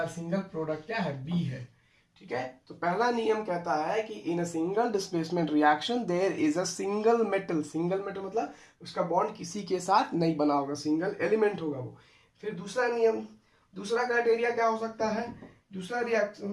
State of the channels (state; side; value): identical; both; correlation 1.00